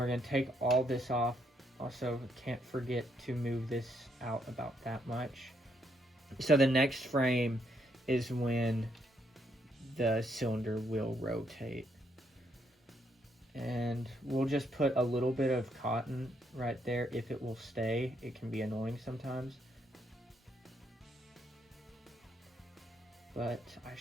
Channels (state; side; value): normal; both; correlation 0.74